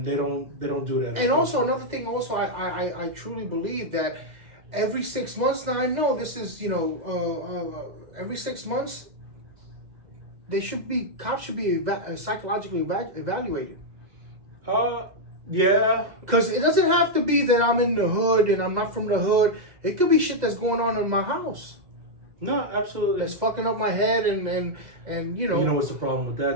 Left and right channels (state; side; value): late; left; 2.0 ms